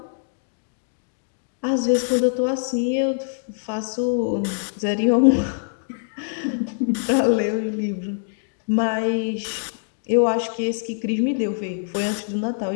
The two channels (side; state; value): right; silent; digital silence